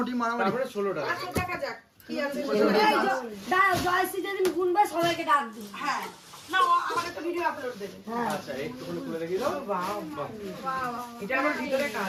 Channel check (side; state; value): both; identical; correlation 1.00